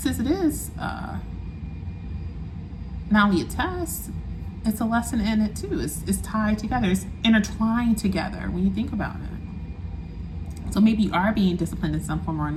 it is not only a test, it's a lesson in it too. It's tied together. It's intertwined together when you think about it. So maybe you are being disciplined in some form or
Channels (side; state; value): both; identical; correlation 1.00